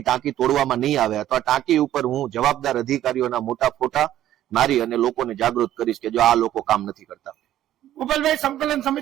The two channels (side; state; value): left; quieter; 12.6 dB